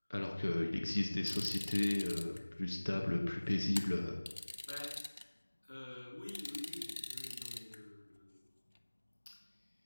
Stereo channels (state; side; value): inverted; both; correlation -1.00